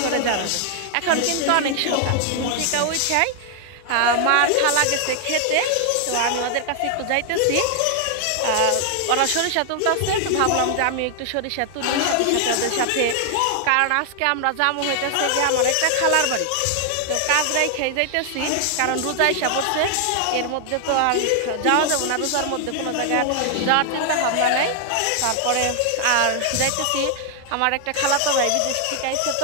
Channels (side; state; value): both; different; correlation 0.00